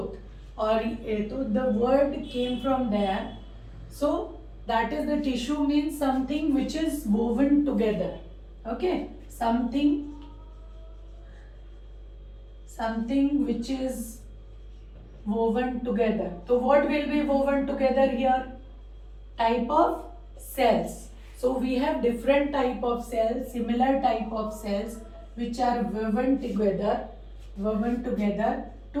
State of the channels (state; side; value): identical; both; correlation 1.00